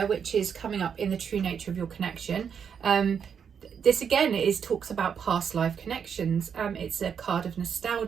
which is coming up in the true nature of your connection. This again talks about past life connections. It's a card of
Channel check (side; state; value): left; quieter; 7.3 dB